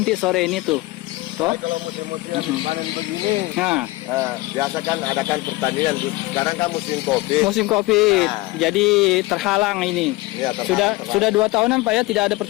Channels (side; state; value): right; quieter; 20.8 dB